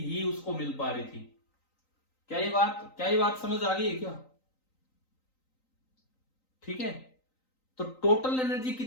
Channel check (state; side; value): late; right; 3.9 ms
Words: ही उसको मिल पा रही थी। क्या ये बात समझ आ गई है क्या? ठीक है, तो टोटल एनर्जी